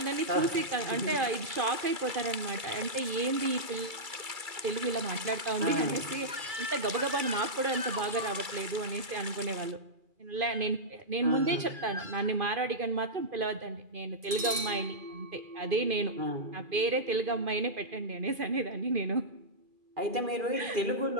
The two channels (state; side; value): late; left; 2.3 ms